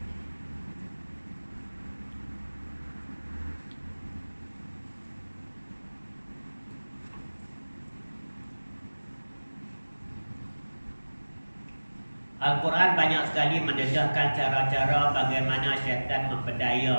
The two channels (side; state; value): both; inverted; correlation -1.00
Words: Al-Quran banyak sekali mendedahkan cara-cara bagaimana syaitan